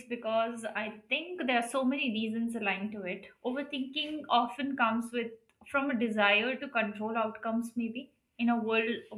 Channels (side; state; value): both; identical; correlation 1.00